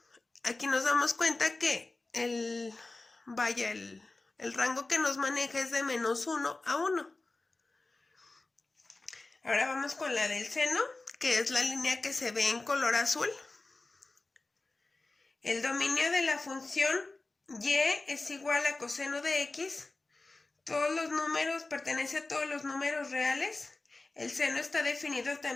Aquí nos damos cuenta que el rango que nos maneja es de -1 a 1. Ahora vamos con la del seno, que es la línea que se ve en color azul. El dominio de la función y es igual a coseno de x. Todos los números, pertenece a todos los números reales. El seno está definido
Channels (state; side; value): quieter; right; 3.2 dB